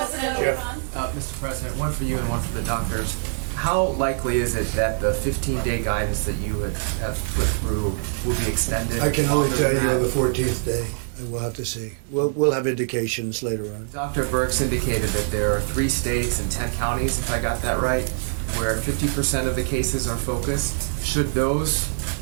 Mr. President, one for you and one for the doctors. How likely is it that the 15-day guidance that you have put through will be extended? I can only longer tell than you on that? the 14th day, and we'll have to see. We'll have indications later on. Dr. Birx indicated that there are 3 states and 10 counties, if I got that right, where 50% of the cases are focused. Should those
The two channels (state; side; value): silent; left; 63 dB below the other